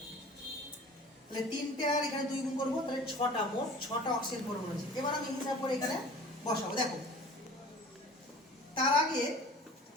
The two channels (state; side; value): normal; both; correlation 0.43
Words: তাহলে 3টে আর এখানে 2 গুণ করবো, তাহলে 6টা, মোট 6টা অক্সিজেন পরমাণু আছে। এবার আমি হিসাব করে এখানে বসাবো। দেখো তার আগে